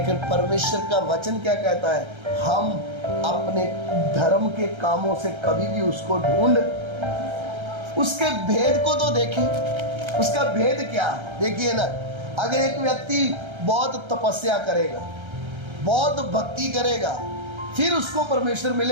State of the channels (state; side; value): late; left; 1.3 ms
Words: परमेश्वर का वचन क्या कहता है, हम अपने धर्म के कामों से कभी भी उसको ढूंढ, उसके भेद को तो देखें, उसका भेद क्या है। देखिए ना, अगर एक व्यक्ति बहुत तपस्या करेगा, बहुत भक्ति करेगा, फिर उसको परमेश्वर